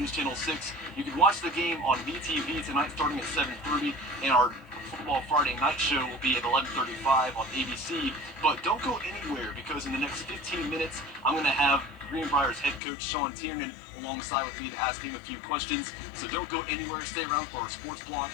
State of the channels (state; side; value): drops out; right; at 12.8 s